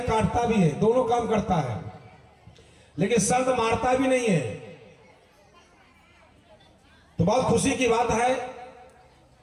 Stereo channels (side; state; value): both; identical; correlation 1.00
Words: काटता भी है, दोनों काम करता है, लेकिन संत मारता भी नहीं है। तो बहुत खुशी की बात है।